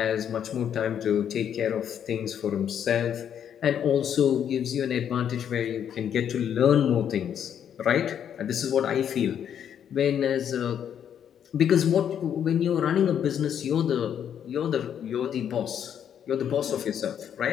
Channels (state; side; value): quieter; right; 9.0 dB